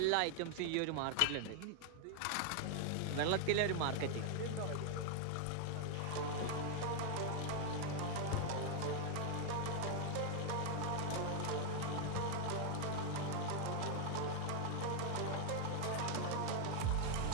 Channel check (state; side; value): different; both; correlation 0.00